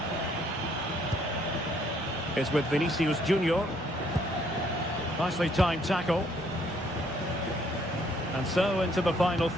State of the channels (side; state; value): both; normal; correlation 0.66